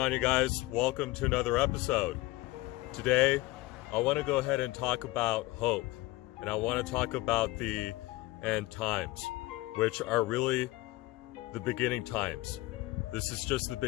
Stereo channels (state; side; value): quieter; right; 20.2 dB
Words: you guys? Welcome to another episode. Today, I want to go ahead and talk about hope, and I want to talk about the end times, which are really the beginning times. This is just the